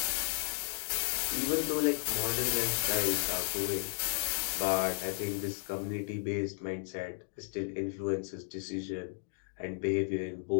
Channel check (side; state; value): right; silent; digital silence